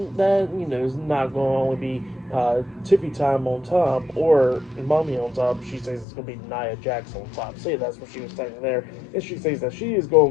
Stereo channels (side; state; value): right; drops out; at 6.1 s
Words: that, is not going to only be Tiffy time on top or Mommy on top. She says it's going to be Nia Jax on top. So yeah, that's what she was saying there. And she says that she is going